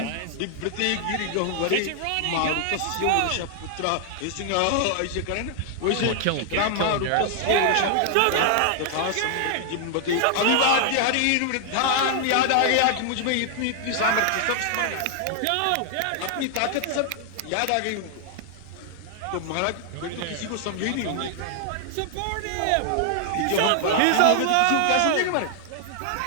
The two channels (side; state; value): both; different; correlation 0.00